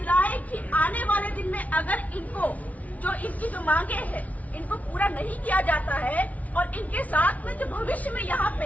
कि आने वाले दिन में अगर इनकी जो मांगे हैं इनको पूरा नहीं किया जाता है और इनके साथ में जो भविष्य में यहाँ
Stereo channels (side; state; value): right; late; 0.070 ms